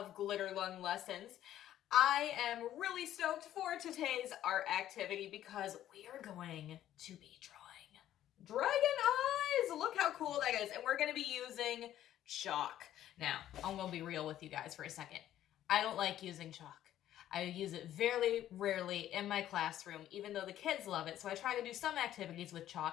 Glitter Lung Lessons. I am really stoked for today's art activity because we are going to be drawing dragon eyes. Look how cool that is. And we're going to be using chalk. Now, I'm going to be real with you guys for a second. I don't like using chalk. I use it very rarely in my classroom, even though the kids love it, so I try to do some activities with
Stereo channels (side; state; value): right; quieter; 12.2 dB